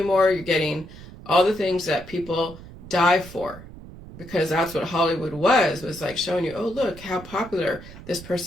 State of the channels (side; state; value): right; noise; rumble, 16 dB below the sound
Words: more, you're getting all the things that people die for. Because that's what Hollywood was like showing you, oh, look how popular this